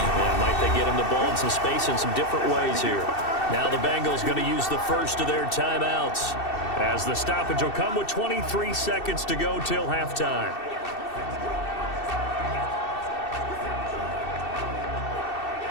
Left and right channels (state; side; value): late; right; 2.7 ms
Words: Yeah, might they get him the ball in some space in some different ways here. Now the Bengals going to use the first of their timeouts, as the stoppage will come with 23 seconds to go till halftime.